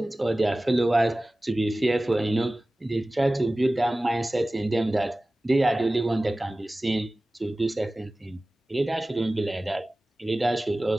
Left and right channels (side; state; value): both; normal; correlation 0.97